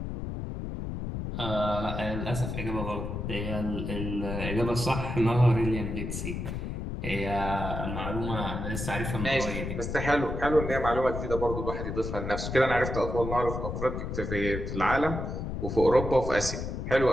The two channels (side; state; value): left; noise; rumble, 4 dB below the sound